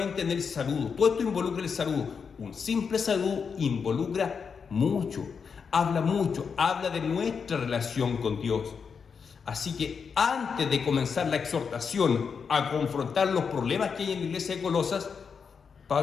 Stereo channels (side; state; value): right; quieter; 6.0 dB